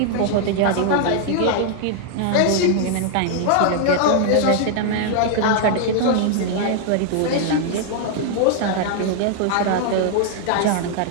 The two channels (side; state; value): both; different; correlation 0.00